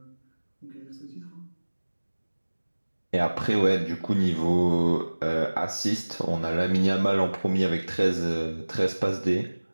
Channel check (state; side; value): inverted; both; correlation -1.00